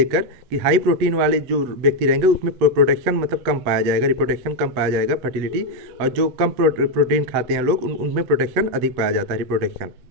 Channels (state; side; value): late; left; 8.4 ms